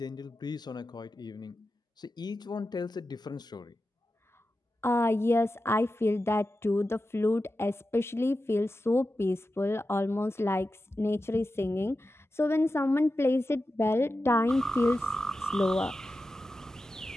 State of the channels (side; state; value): both; normal; correlation 0.92